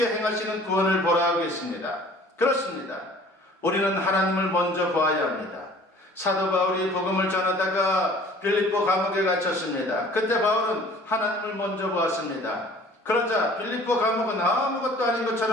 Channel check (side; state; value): both; normal; correlation 0.49